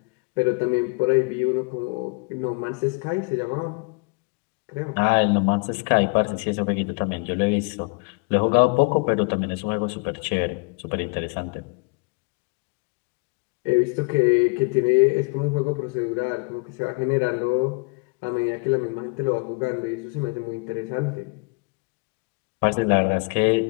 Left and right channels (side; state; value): right; quieter; 30.7 dB